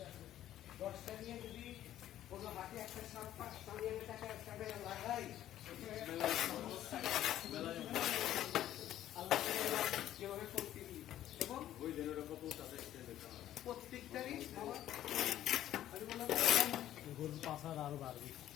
আছে 10টা নিয়ে যদি কোনো হাতে একটা সামনে টাকা লাগাই আল্লাহ কিভাবে করতে এবং ওই জেনারেটর কত আছে প্রত্যেকটারই গরুর পাশার আরো বাড়বে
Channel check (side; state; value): right; quieter; 12.5 dB